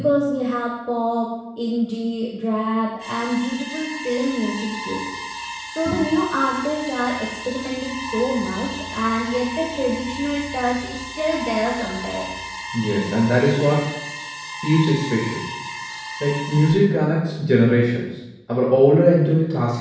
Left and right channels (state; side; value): identical; both; correlation 1.00